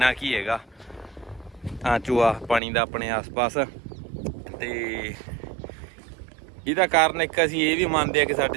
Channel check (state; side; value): drops out; left; at 2.6 s